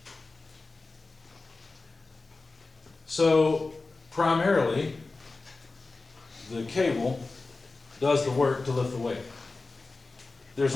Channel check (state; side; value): quieter; right; 3.6 dB